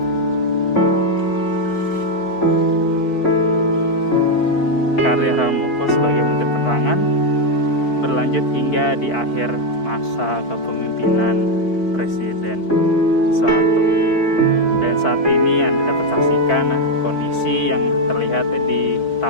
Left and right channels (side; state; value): right; late; 4.5 ms